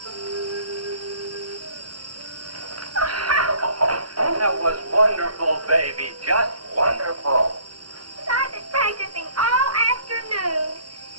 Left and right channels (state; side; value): late; left; 0.71 ms